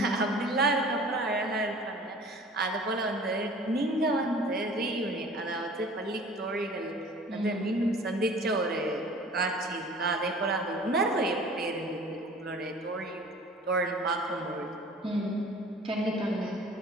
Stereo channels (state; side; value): normal; both; correlation 0.45